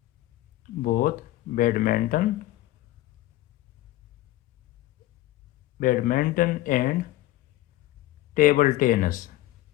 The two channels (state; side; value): quieter; right; 16.0 dB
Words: both badminton badminton and table tennis